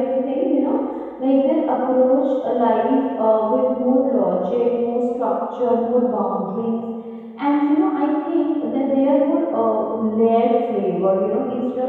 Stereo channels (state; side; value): identical; both; correlation 1.00